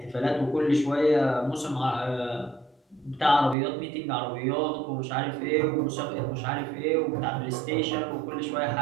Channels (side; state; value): left; drops out; at 3.6 s